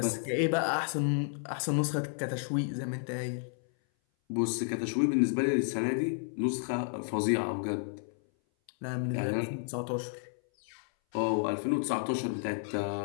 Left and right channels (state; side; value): silent; right; 57 dB below the other